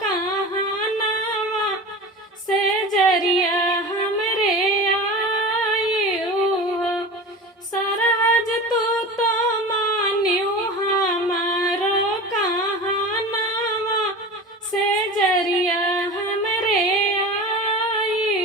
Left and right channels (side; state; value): both; normal; correlation 0.32